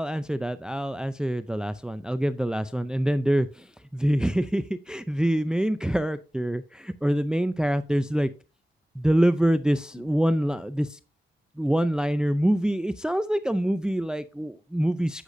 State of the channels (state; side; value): normal; both; correlation 0.98